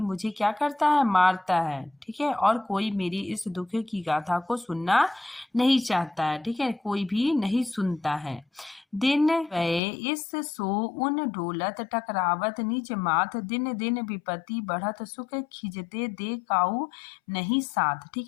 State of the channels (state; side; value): drops out; right; at 9.8 s